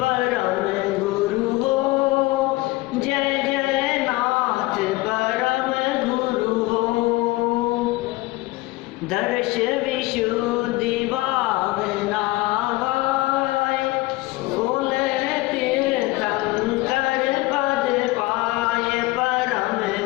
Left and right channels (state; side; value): quieter; right; 20.5 dB